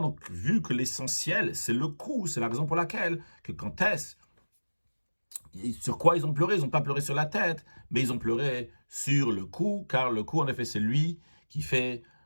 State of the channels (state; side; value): inverted; both; correlation -1.00